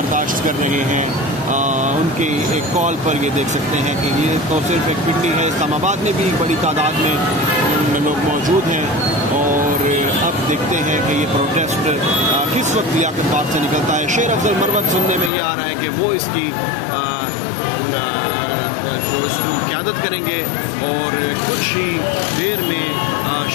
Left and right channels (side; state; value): right; drops out; at 15.3 s